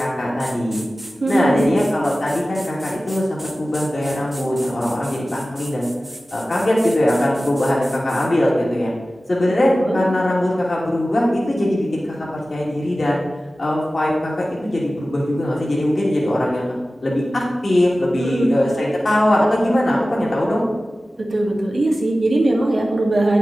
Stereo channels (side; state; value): both; normal; correlation 0.96